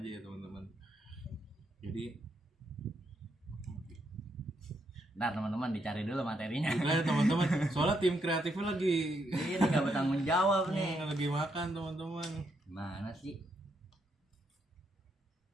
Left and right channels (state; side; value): normal; both; correlation 0.78